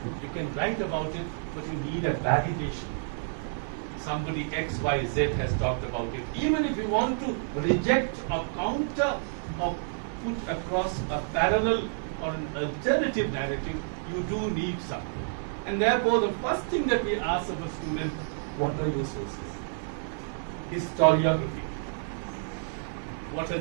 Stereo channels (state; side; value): silent; left; 57 dB below the other